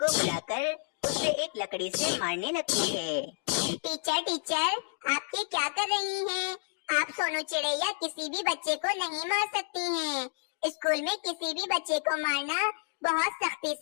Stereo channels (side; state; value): right; silent; digital silence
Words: बुलाकर उसे एक लकड़ी से मारने लगती है। टीचर टीचर, आप ये क्या कर रही हैं? आप सोनू चिड़े या किसी भी बच्चे को नहीं मार सकती हैं। स्कूल में किसी भी बच्चे को मारना बहुत सख्ती